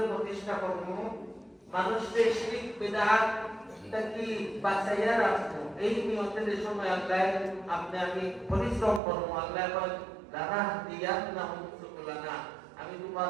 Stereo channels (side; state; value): left; drops out; at 9.0 s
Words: প্রতিষ্ঠা করব মানুষকে শিরক বিদআত থেকে বাঁচাইয়া রাখবো এই নিয়তে যে সময় আল্লাহ আপনি আমি পরিশ্রম করব আল্লাহ বলেন লানা দিয়াতনাহুম সুবুলানা আমি তোমার